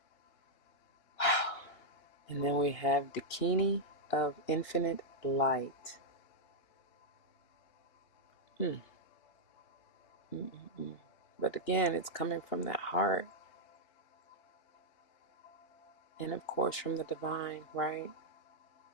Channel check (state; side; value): late; right; 2.8 ms